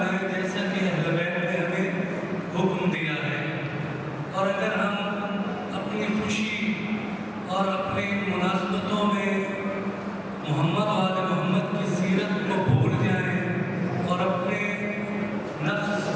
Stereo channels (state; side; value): identical; both; correlation 1.00